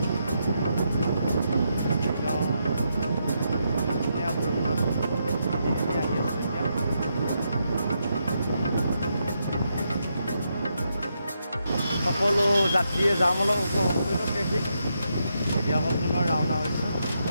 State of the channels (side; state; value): both; inverted; correlation -0.81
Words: ধুনীয়া বৰষুণত আহি আছোঁ এতিয়া। সকলো যাত্ৰীয়ে যাম অলপ উপভোগ কৰিলোঁ ট্ৰেফিক। এতিয়া আকৌ পুনৰ ৰাওনা হৈছোঁ।